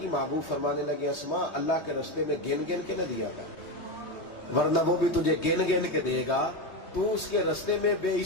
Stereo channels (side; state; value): right; late; 3.2 ms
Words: محبوب فرمانے لگے اسماء اللہ کے رستے میں گن گن کے نہ دیا کر, ورنہ وہ بھی تجھے گن گن کے دے گا. تو اس کے رستے میں بے